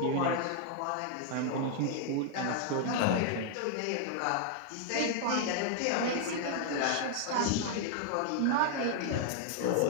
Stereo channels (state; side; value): different; both; correlation 0.00